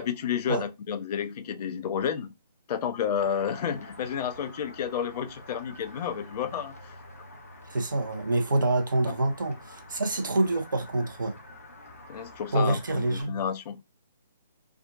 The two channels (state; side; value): inverted; both; correlation -0.61